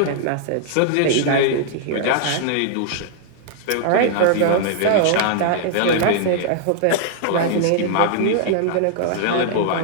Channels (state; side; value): different; both; correlation -0.01